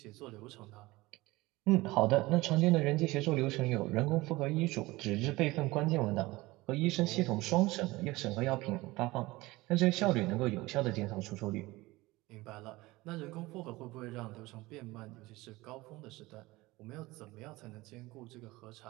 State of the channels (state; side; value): quieter; left; 20.4 dB